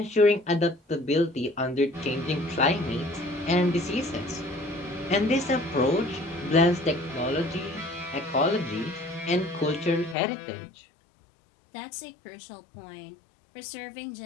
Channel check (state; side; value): drops out; right; at 10.2 s